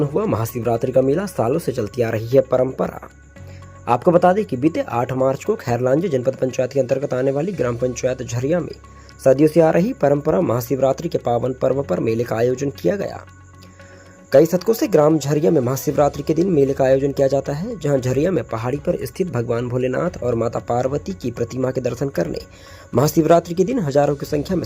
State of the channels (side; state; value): both; identical; correlation 1.00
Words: हुआ महाशिवरात्रि का मेला सालों से चलती आ रही है परंपरा। आपको बता दें कि बीते 8 मार्च को खैरलांजी जनपद पंचायत के अंतर्गत आने वाली ग्राम पंचायत झरिया में सदियों से आ रही परंपरा महाशिवरात्रि के पावन पर्व पर मेले का आयोजन किया गया। कई शतकों से ग्राम झरिया में महाशिवरात्रि के दिन मेले का आयोजन किया जाता है, जहां झरिया में पहाड़ी पर स्थित भगवान भोलेनाथ और माता पार्वती की प्रतिमा के दर्शन करने महाशिवरात्रि के दिन हजारों की संख्या में